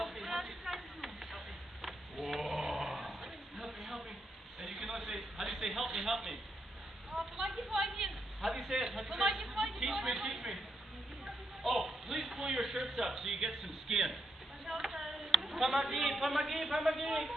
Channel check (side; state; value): both; normal; correlation 0.81